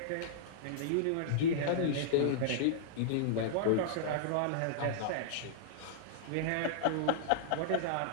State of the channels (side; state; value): both; different; correlation -0.02